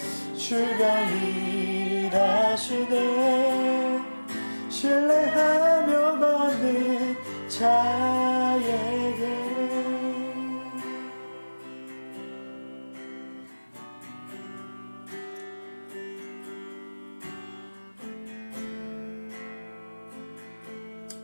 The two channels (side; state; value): both; inverted; correlation -1.00